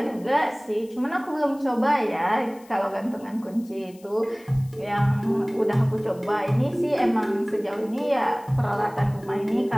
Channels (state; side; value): noise; left; hiss, 26 dB below the sound